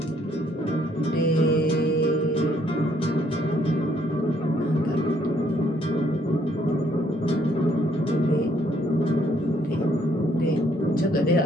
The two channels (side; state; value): both; normal; correlation 0.67